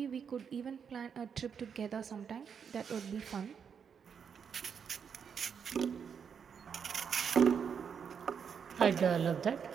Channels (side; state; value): left; quieter; 7.0 dB